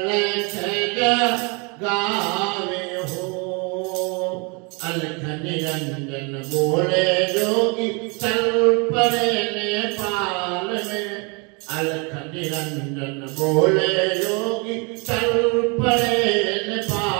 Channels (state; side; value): quieter; left; 31.8 dB